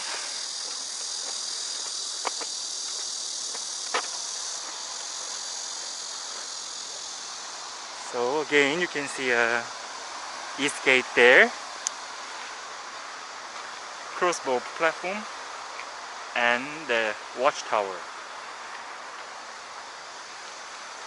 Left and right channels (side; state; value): both; identical; correlation 1.00